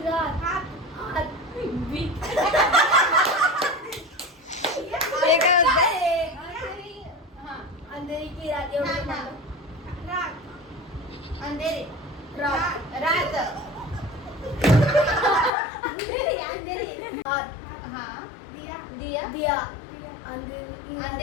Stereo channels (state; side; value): drops out; right; at 15.5 s